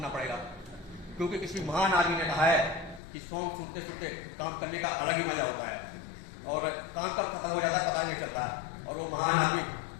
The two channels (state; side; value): drops out; right; at 3.0 s